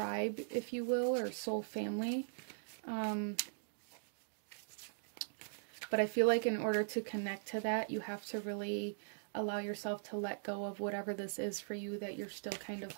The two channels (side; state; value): left; silent; digital silence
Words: if you will, or soul family. But I feel like in order to connect to that, you have to really allow yourself to let go of whatever this is for you that you're still kind of